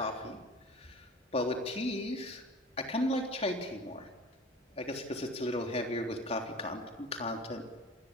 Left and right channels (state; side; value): normal; both; correlation 0.39